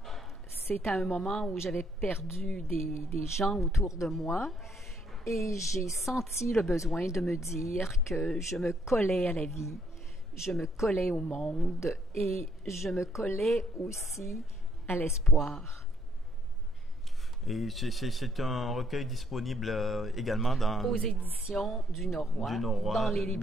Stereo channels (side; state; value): both; normal; correlation 0.69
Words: C'est à un moment où j'avais perdu des gens autour de moi et j'ai senti le besoin de me dire que je me collais à la vie, je me collais au monde et je me collais aussi à l'espoir. Et c'est un recueil disponible également aux éditions du Norois, dans les